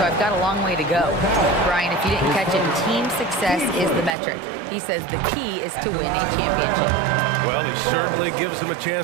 I've got a long way to go. Brian, if you didn't catch it, team success is the metric. He says the key is to win a championship. Well, he certainly gives them a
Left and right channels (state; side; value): drops out; left; at 4.1 s